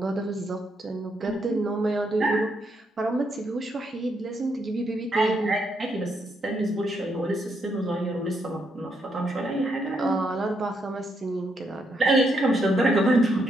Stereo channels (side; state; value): both; normal; correlation 0.77